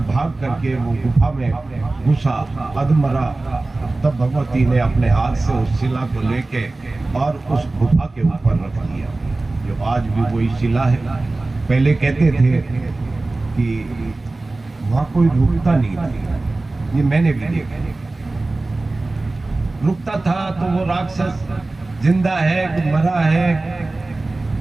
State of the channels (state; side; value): quieter; left; 3.1 dB